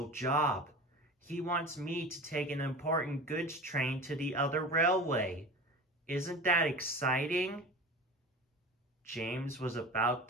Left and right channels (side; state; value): both; normal; correlation 0.34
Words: job. He wants me to take an important goods train to the other railway. Isn't that exciting?" James was about